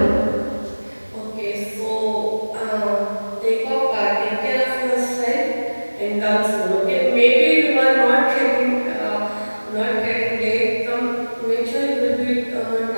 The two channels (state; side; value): inverted; both; correlation -1.00